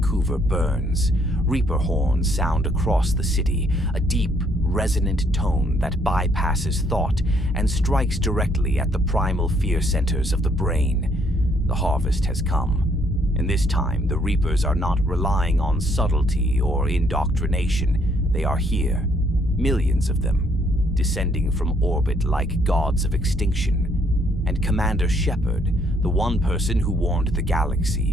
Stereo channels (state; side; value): normal; both; correlation 0.68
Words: burns. Reaper horns sound across the city, a deep, resonant tone that bypasses thought and strikes directly at the primal fear centers of the brain. The harvest has come. And this time, the Reapers are not relying on subtlety or indoctrination. They are here, millions of them, descending from orbit like gods of extinction. And Commander Shepard, the one person who warned the